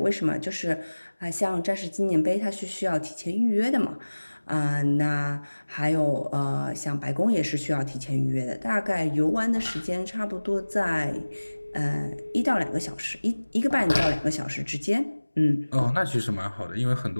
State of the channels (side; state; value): both; inverted; correlation -1.00